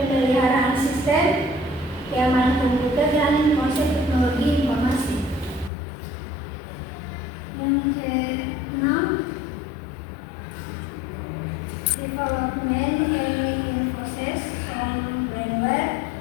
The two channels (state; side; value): drops out; right; at 5.7 s